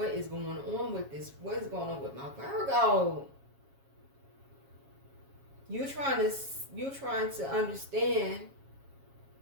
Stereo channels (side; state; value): left; late; 7.3 ms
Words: is going on with this? What is going on with my Virgo? You're trying to understand